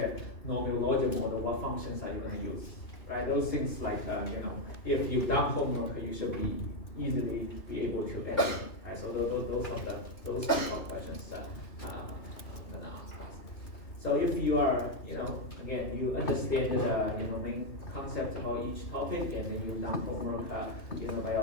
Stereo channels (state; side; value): late; right; 2.7 ms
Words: logic model, what functions are you going to use, right? Those things like, if you've done homework, you should be easily be able to answer, right? So those type of questions I'm going to ask. So if you are, again, you understand the, main concept about each topic, and then you've done homework, by